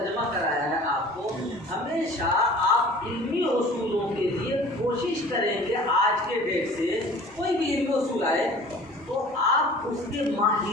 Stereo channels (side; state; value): both; normal; correlation 0.45